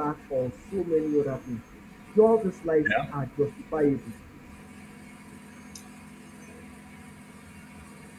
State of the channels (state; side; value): identical; both; correlation 1.00